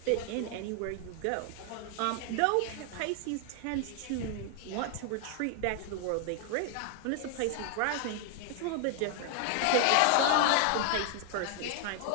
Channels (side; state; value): both; different; correlation 0.00